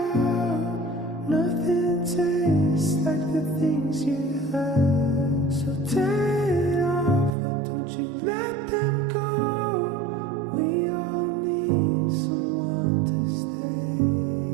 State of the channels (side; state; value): left; drops out; at 7.4 s